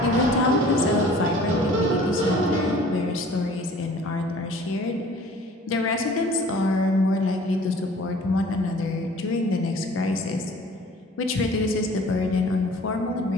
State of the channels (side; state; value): both; normal; correlation 0.49